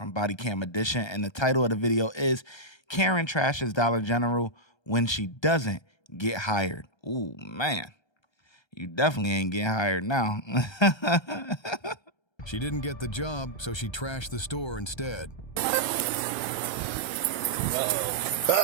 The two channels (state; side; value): late; right; 1.3 ms